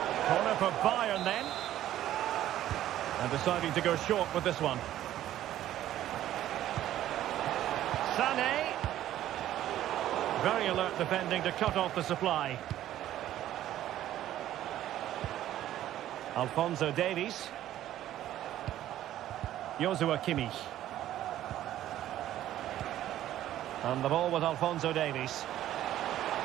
Corner for Bayern then. And deciding to go short with this one. Sané. Very alert defending to cut off the supply. Alphonso Davies. Joshua Kimmich. And the ball with Alphonso Davies.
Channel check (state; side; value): quieter; left; 12.8 dB